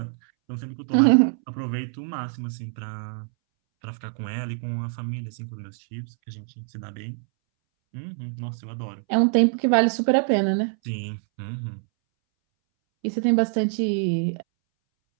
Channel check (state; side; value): silent; left; 61 dB below the other